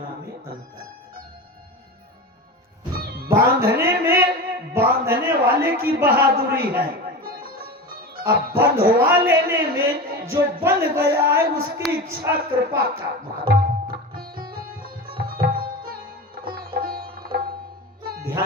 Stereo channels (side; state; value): both; normal; correlation 0.27